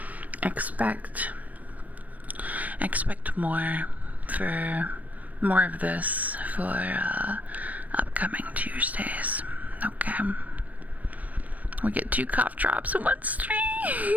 Expect more of this for upcoming Tuesdays. Okay. We get 2 cough drops in one stream.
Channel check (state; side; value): late; left; 0.074 ms